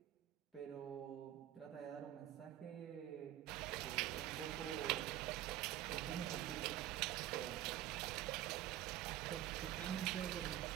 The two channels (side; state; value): left; quieter; 13.3 dB